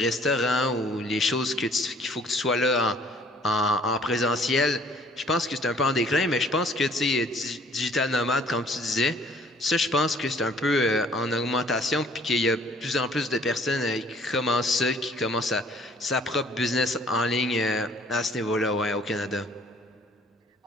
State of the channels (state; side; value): normal; both; correlation 0.57